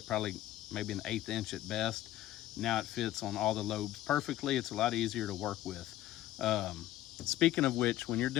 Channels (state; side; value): quieter; right; 14.5 dB